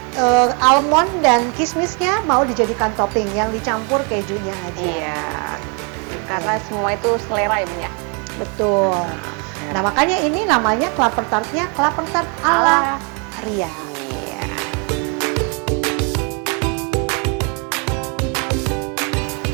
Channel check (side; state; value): left; quieter; 35.6 dB